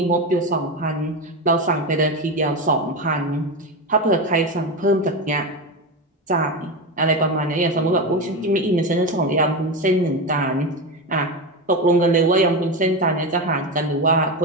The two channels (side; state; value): both; normal; correlation 0.17